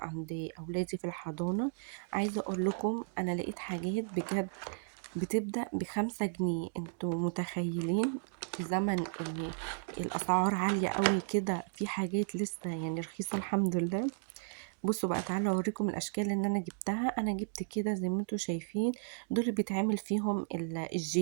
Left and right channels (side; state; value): left; silent; digital silence